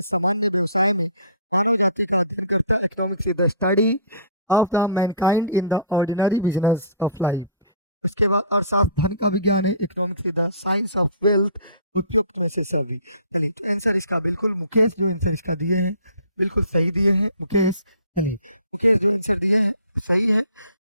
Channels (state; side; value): inverted; both; correlation -0.48